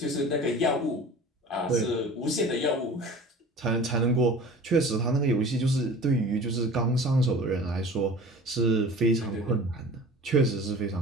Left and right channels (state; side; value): normal; both; correlation 0.41